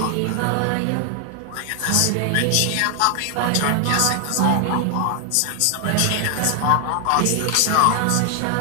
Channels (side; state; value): both; different; correlation 0.00